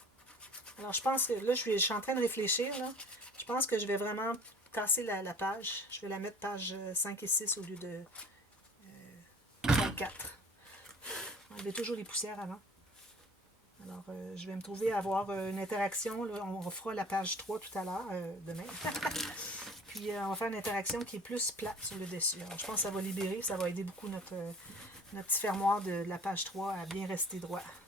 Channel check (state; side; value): normal; both; correlation 0.47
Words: Alors, je pense que là, je suis en train de réfléchir. Là. Je pense que je vais vraiment casser la page. Je vais la mettre page 5 et 6 au lieu de 4. Enlevez toujours les poussières avant. Alors, je vais me trouver à avoir une interaction. Là, on fera la page 3 tout à l'heure, demain. Puis, on va faire une interaction qui est plus plate sur le dessus. Alors, je pense que ça va libérer, ça va aider beaucoup notre petit fermoir de la page 3 à bien rester droit.